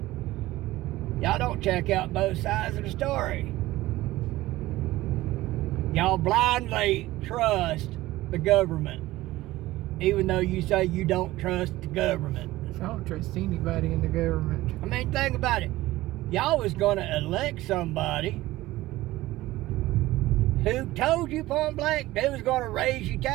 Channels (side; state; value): left; quieter; 17.3 dB